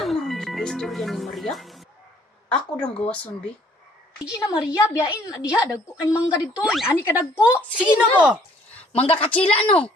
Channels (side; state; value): both; normal; correlation 0.61